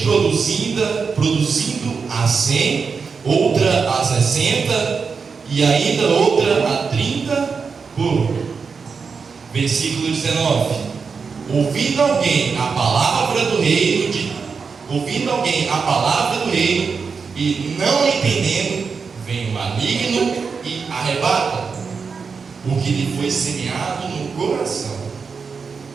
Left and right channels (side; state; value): left; quieter; 5.4 dB